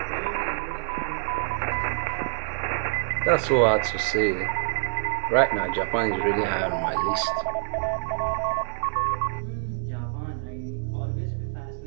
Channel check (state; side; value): silent; left; digital silence